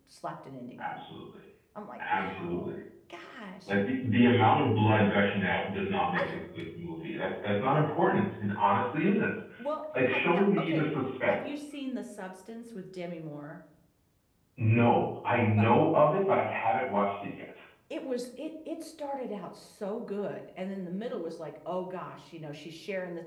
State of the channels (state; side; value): identical; both; correlation 1.00